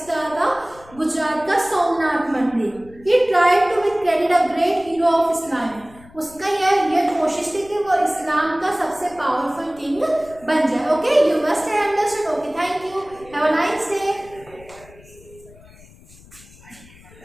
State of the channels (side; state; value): left; noise; rumble, 23 dB below the sound